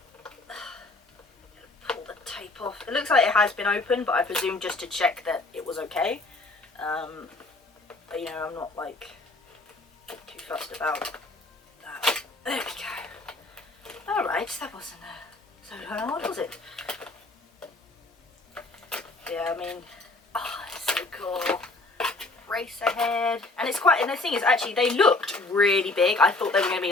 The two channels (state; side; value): quieter; right; 3.2 dB